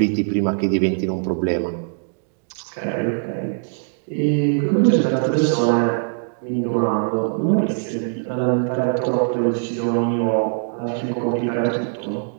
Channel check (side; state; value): left; silent; digital silence